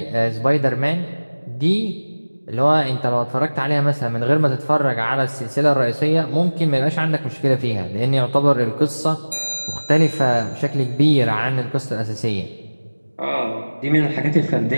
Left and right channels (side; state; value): both; inverted; correlation -1.00